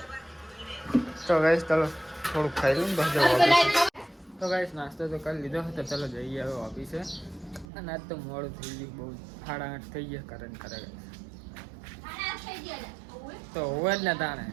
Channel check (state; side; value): drops out; left; at 7.7 s